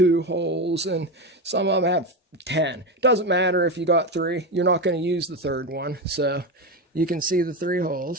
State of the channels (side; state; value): both; normal; correlation 0.17